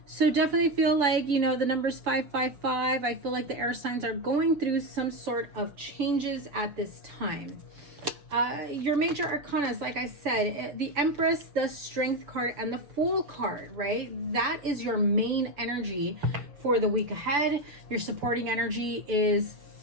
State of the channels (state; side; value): late; left; 7.0 ms